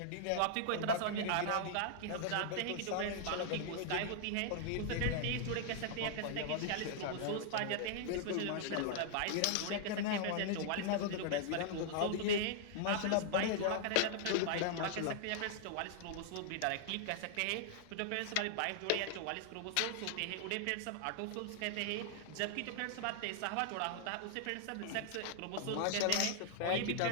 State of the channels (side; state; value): both; different; correlation -0.01